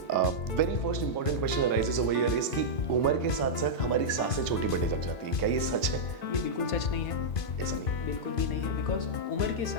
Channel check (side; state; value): right; late; 2.4 ms